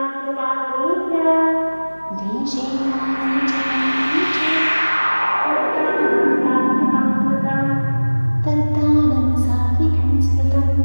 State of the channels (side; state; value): both; inverted; correlation -1.00